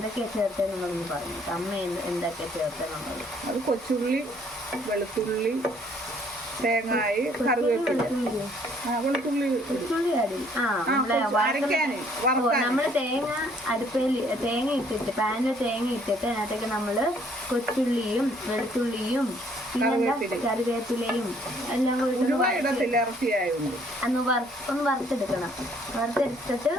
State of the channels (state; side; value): normal; both; correlation 0.62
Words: ചേർത്തെന്നുള്ളതെന്ന് പറഞ്ഞു. അമ്മ എന്തൊക്കെയാണ് ചേർത്തെന്നുള്ളത് അത് കൊച്ചുള്ളി, വെളുത്തുള്ളി, തേങ്ങായി, കറിവേപ്പില, വെളുത്തുള്ളി. നമ്മള് തേങ്ങ അടുപ്പിൽ തേങ്ങ ഇട്ടിട്ട് പാനിൽ തേങ്ങ ഇട്ടിട്ട് അതിനകത്തേക്ക് നമ്മള് കൊച്ചുള്ളിയും വെളുത്തുള്ളിയും കറിവേപ്പിലയും എല്ലാം കൂടി ഒന്ന് വറുത്തെടുക്കണം. വറുത്തെടുത്തിട്ട്